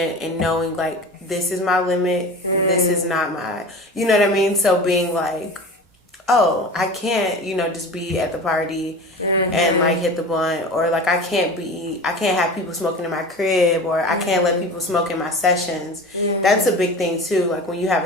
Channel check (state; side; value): normal; both; correlation 0.34